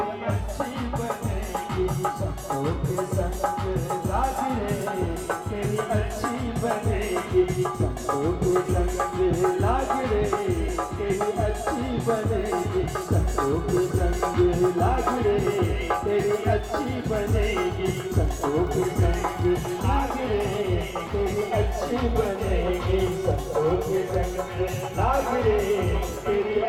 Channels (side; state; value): both; identical; correlation 1.00